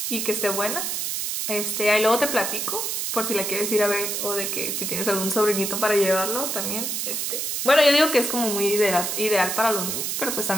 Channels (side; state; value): right; noise; hiss, 2 dB below the sound